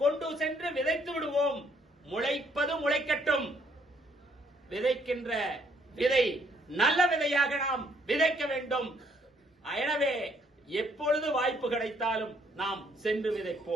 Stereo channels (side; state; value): both; normal; correlation 0.67